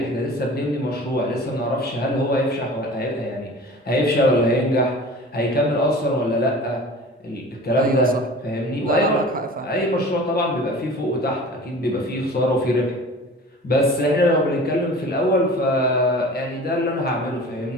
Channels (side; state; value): both; normal; correlation 0.41